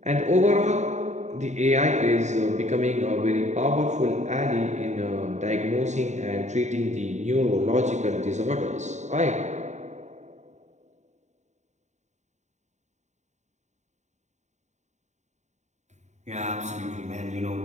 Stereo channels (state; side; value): late; left; 0.34 ms